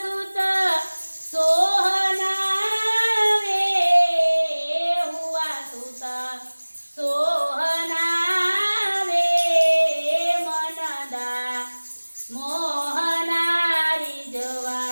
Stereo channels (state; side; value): inverted; both; correlation -1.00